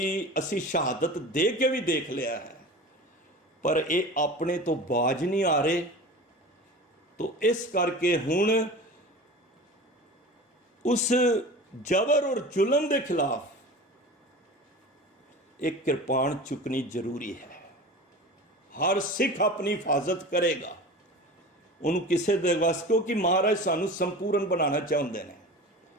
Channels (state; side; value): normal; both; correlation 0.35